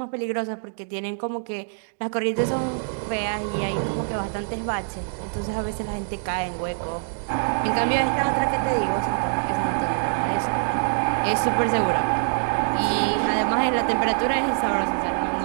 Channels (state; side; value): silent; left; digital silence